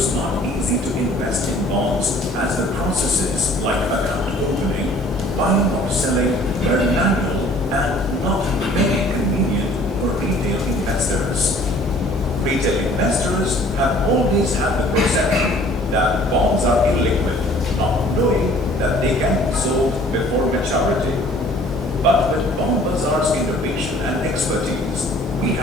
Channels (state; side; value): normal; both; correlation 0.53